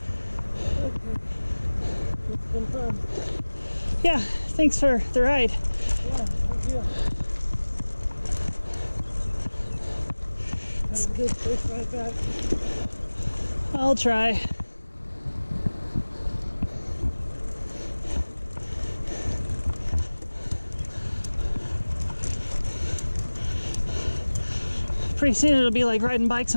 been fun. Yeah, thanks for the ride. Yeah, thank you. Have a good safe ride back. I'll try. Pretty soon it'll be like riding bikes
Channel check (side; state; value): both; inverted; correlation -1.00